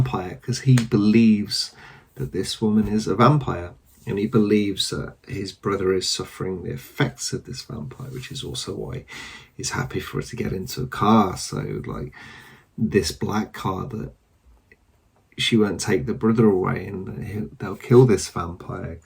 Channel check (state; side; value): identical; both; correlation 1.00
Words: because he believes that this woman is a vampire. And he believes that his brother is suffering the effects of this vampire, which is also why he's happy for her to get into a car. So, like, this black car, that she won't take the brother away and they'll kill this vampire